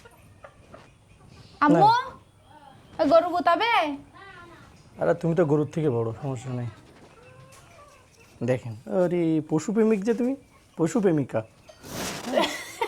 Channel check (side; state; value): both; identical; correlation 1.00